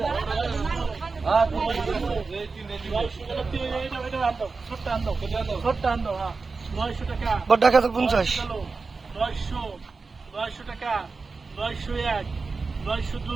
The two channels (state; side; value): quieter; left; 4.3 dB